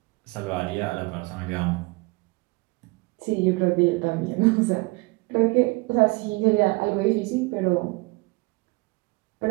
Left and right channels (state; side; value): quieter; left; 25.3 dB